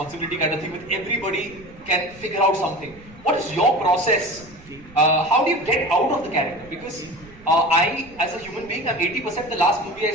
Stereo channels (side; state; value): right; noise; rumble, 23 dB below the sound